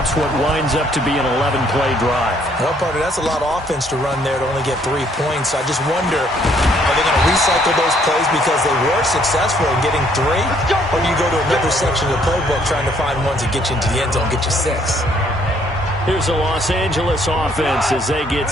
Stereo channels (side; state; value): both; normal; correlation 0.65